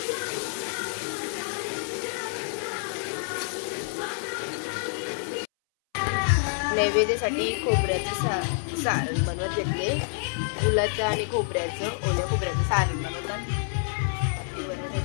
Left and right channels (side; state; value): right; silent; 60 dB below the other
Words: नैवेद्यासाठी खोबऱ्याचं सारण बनवत घेतले. गुलाचं आणि खोबऱ्याचं, ओल्या खोबऱ्याचं सारण बनवतात ते बनवून